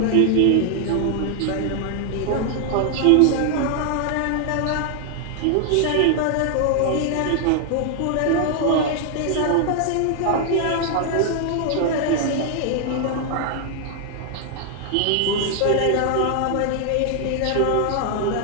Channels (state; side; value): different; both; correlation 0.00